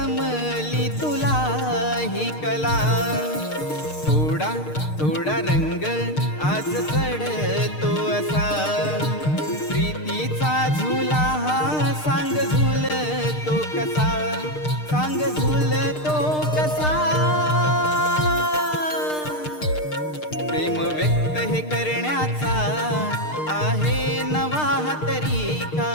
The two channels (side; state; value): right; late; 6.6 ms